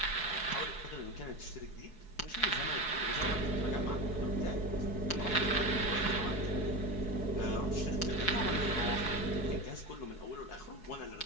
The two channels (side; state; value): right; late; 4.7 ms